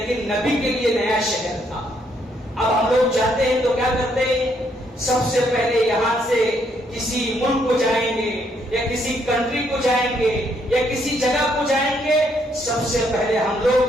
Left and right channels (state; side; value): normal; both; correlation 0.72